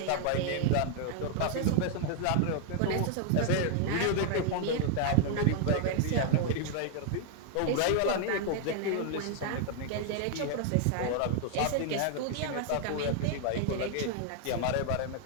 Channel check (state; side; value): different; both; correlation 0.00